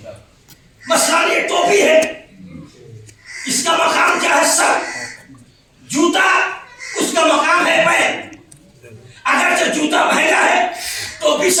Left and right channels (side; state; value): both; identical; correlation 1.00